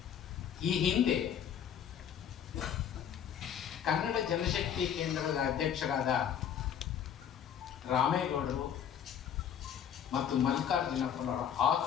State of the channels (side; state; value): right; quieter; 8.9 dB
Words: ಈ ಹಿಂದೆ ಕನ್ನಡ ಜನಶಕ್ತಿ ಕೇಂದ್ರದ ಅಧ್ಯಕ್ಷರಾದ ರಾಮೇಗೌಡರು ಮತ್ತು ಮಲ್ಲಿಕಾರ್ಜುನಪ್ಪನವರ